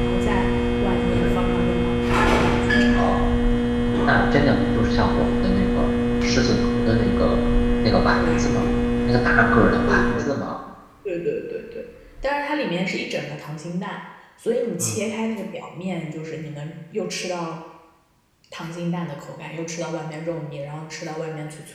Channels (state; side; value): identical; both; correlation 1.00